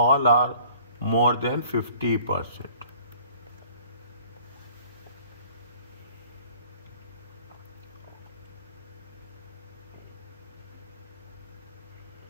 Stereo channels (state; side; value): inverted; both; correlation -0.52